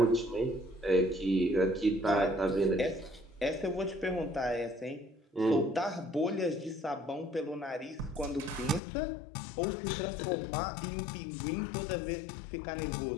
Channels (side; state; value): right; drops out; at 8.8 s